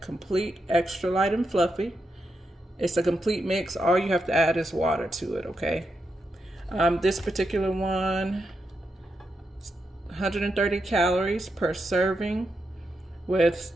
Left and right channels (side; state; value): both; normal; correlation 0.85